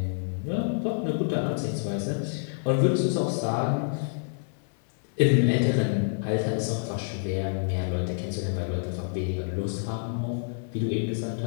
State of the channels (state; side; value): silent; right; 60 dB below the other